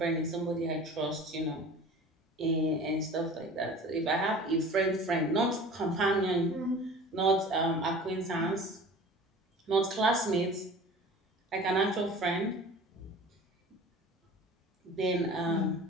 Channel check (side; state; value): both; normal; correlation 0.41